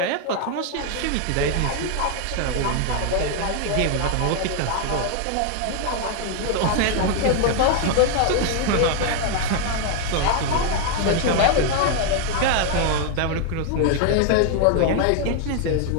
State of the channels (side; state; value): both; different; correlation 0.01